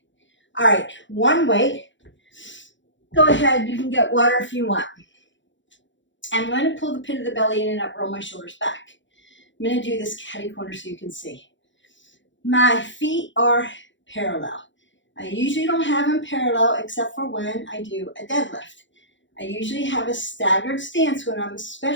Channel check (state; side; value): late; right; 0.54 ms